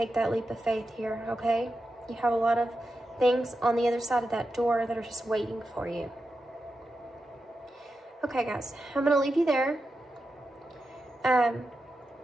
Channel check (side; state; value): both; normal; correlation 0.90